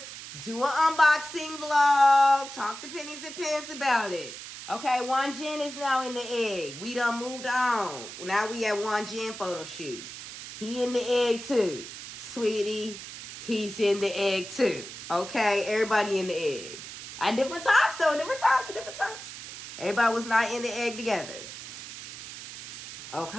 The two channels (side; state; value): right; noise; hiss, 12 dB below the sound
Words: do an unboxing vlog, talk to Pennies and Pens about it. Okay, Wanjin is now in the egg. We done moved on. Now we at Wanjin photo shoot. He in the egg too. Sweetie, he's in the egg too. Okay, everybody in the egg. At different times, though. Different times. Everybody was not in the egg together.